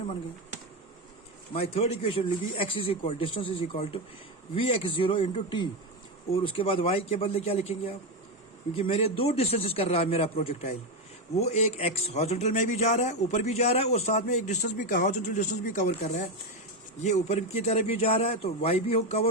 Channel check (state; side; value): normal; both; correlation 0.10